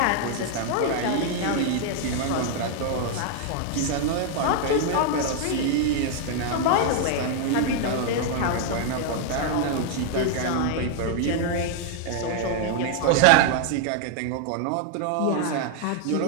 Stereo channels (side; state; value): both; different; correlation 0.00